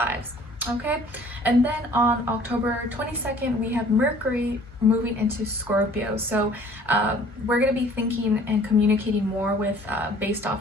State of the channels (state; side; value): normal; both; correlation 0.52